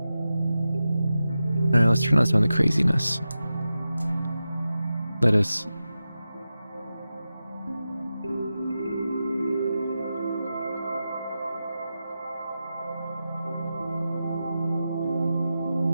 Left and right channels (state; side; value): inverted; both; correlation -0.92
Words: Alright, let's turn on some of the craziness. Let us...